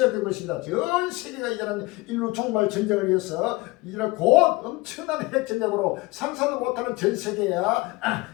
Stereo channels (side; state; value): right; quieter; 21.9 dB